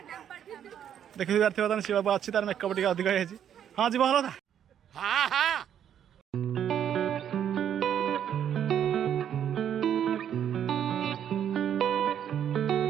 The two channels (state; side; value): quieter; left; 9.5 dB